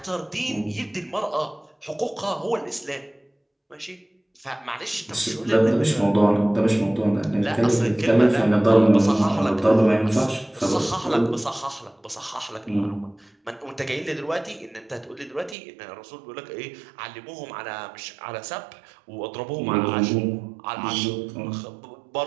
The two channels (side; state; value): left; drops out; at 15.6 s